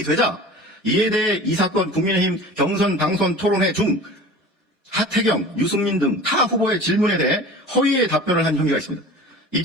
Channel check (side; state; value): both; normal; correlation 0.39